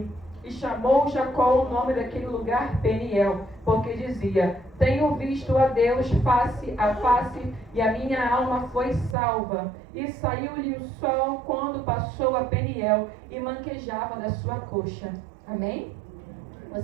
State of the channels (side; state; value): left; drops out; at 9.2 s